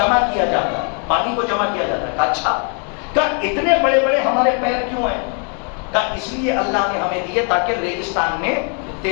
کیا جاتا ہے، پانی کو جمع کیا جاتا ہے. اچھا، کہ اتنے بڑے بڑے ہمارے پیر کیوں ہیں؟ کہ اس لیے اللہ نے ہمیں دیے تاکہ ریگستان میں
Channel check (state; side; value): quieter; right; 39.7 dB